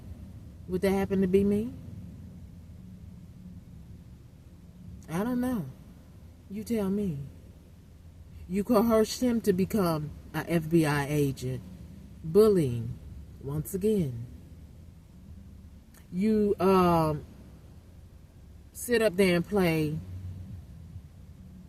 Would that happen to be me? I don't know. You tell me. You coerced him to become an FBI agent. Bullying. Once again. You sit up there and play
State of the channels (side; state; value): both; identical; correlation 1.00